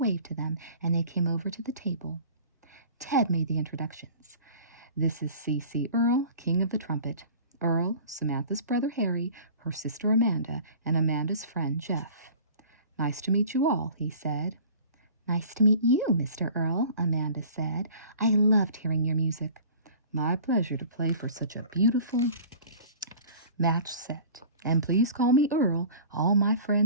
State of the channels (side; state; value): both; inverted; correlation -0.44